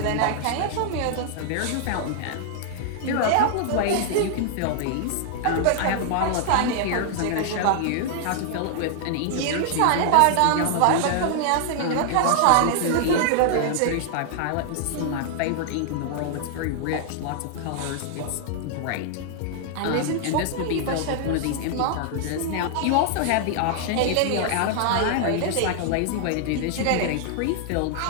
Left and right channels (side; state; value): both; different; correlation 0.00